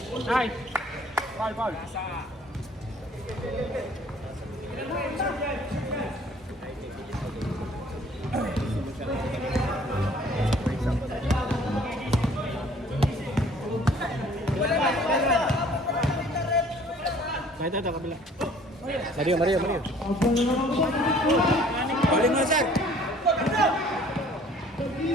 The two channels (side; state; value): both; normal; correlation 0.55